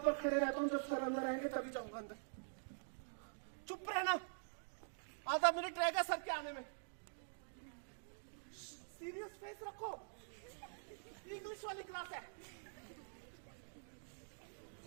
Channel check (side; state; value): left; silent; digital silence